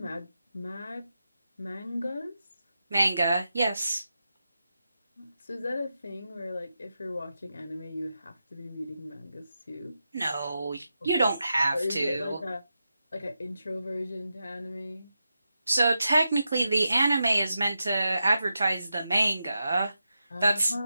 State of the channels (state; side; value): inverted; both; correlation -0.89